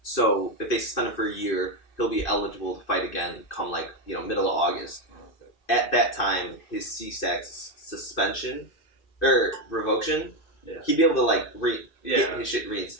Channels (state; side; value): late; right; 2.6 ms